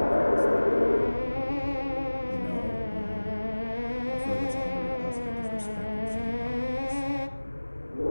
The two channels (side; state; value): both; inverted; correlation -1.00